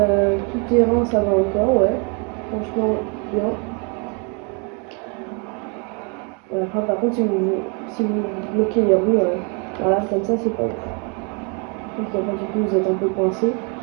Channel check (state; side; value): quieter; left; 34.9 dB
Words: Tout terrain, ça va encore, ouais. Franchement, bien. Après, par contre, si vous bloquez les roues, voilà, comme ça, c'est pas ouf. Donc, après, du coup, vous êtes un peu coincé.